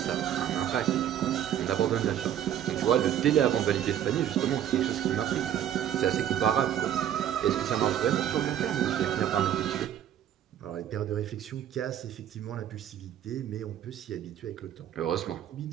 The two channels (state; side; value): quieter; left; 10.6 dB